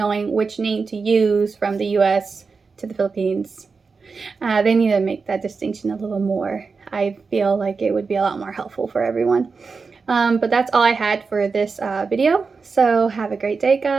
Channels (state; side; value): quieter; left; 4.7 dB